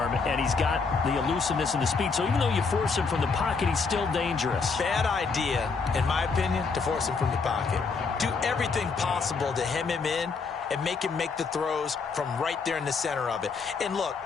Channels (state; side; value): quieter; right; 4.8 dB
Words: and he's got the elusiveness and the speed. So even though you force him from the pocket, he's still dangerous. Bad idea, in my opinion, to force him from the pocket. Do everything possible to hem him in and make him make the throws from right there in the center of it. And look,